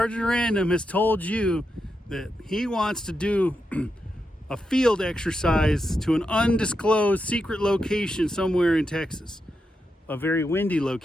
Random has told you that he wants to do a field exercise to an undisclosed secret location somewhere in Texas. A very windy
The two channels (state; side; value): normal; both; correlation 0.86